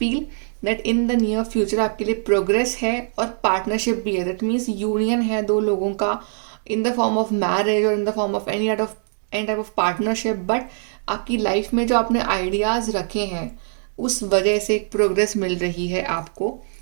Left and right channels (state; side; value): silent; left; 64 dB below the other